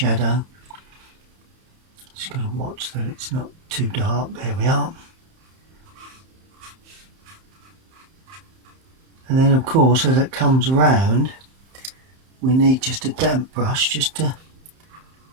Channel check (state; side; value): late; left; 31 ms